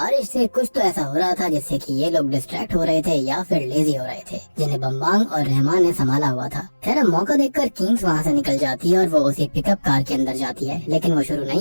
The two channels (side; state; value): both; inverted; correlation -1.00